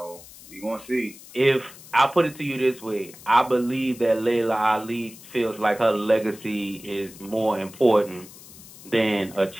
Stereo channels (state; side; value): noise; left; hiss, 19 dB below the sound